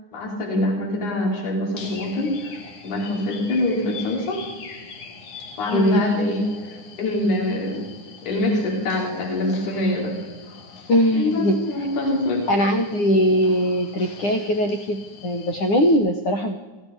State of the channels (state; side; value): late; right; 9.8 ms